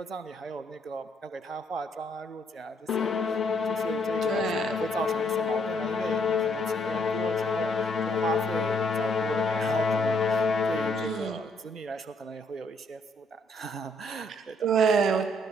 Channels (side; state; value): both; normal; correlation 0.70